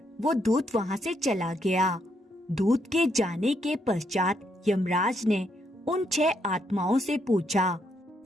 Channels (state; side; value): normal; both; correlation 0.76